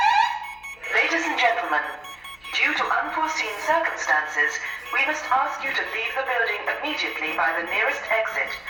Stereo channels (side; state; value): left; noise; hum, 29 dB below the sound